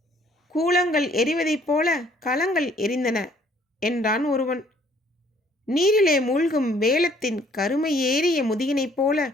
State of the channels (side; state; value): both; normal; correlation 0.61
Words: கூலங்கள் எரிவதைப் போல களங்கள் எரிந்தன என்றான் ஒருவன். நீரிலே மூழ்கும் வேலத்தின் கருமை ஏறிய முதுகினைப் போல